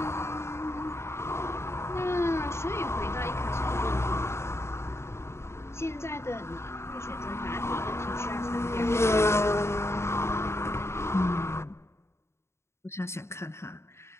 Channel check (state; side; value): late; right; 0.13 ms